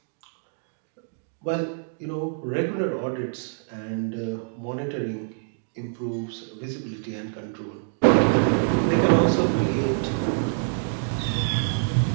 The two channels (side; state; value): left; silent; digital silence